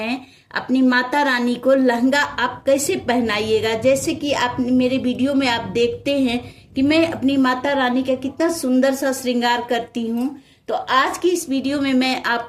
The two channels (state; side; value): identical; both; correlation 1.00